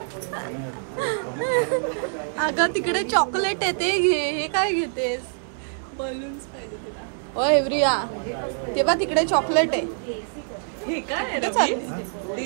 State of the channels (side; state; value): left; silent; 62 dB below the other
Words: अगं तिकडे चॉकलेट आहे ते घे. हे काय घेतेस? बलून्स पाहिजे तुला. होय प्रिया तेव्हा तिकडे चॉकलेट आहे. हे काय तेच